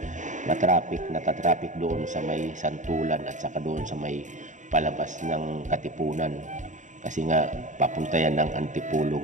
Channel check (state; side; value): late; left; 0.36 ms